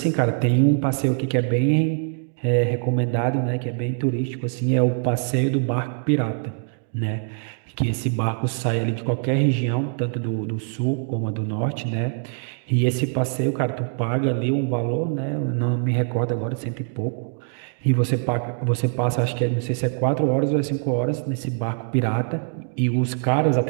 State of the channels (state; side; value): silent; left; 63 dB below the other